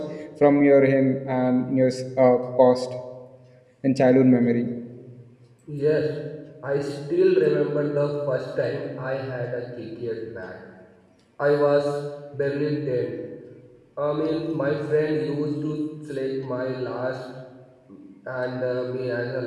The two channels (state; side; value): identical; both; correlation 1.00